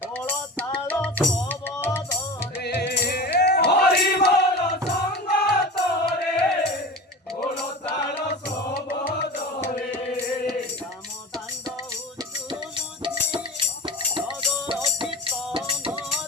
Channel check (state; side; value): normal; both; correlation 0.32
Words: গোল তাল সবরে হরি বল সঙ্গ তরে গোল তাল সবরে রাম দাণ্ড উচ্চুলুচি নগর কীর্তন